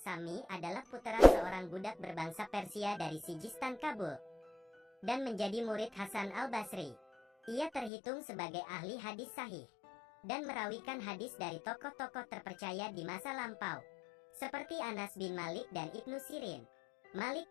adalah putra seorang budak berbangsa Persia dari Sijistan Kabul dan menjadi murid Hasan al-Basri. Ia terhitung sebagai ahli hadis sahih dan merawikan hadis dari tokoh-tokoh terpercaya di masa lampau seperti Anas bin Malik dan Ibnu Sirin. Malik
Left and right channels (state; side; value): drops out; right; at 7.9 s